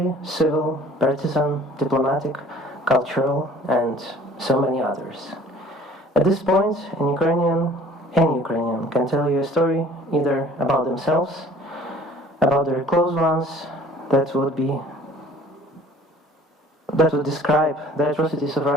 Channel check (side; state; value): both; normal; correlation 0.51